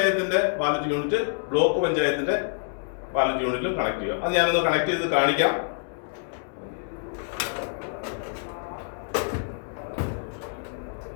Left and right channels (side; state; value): right; silent; digital silence